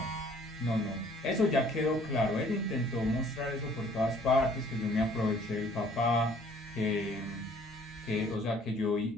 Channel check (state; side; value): normal; both; correlation 0.57